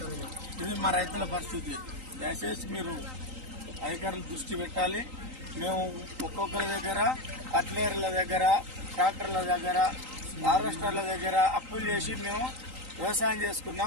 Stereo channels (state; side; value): late; left; 3.8 ms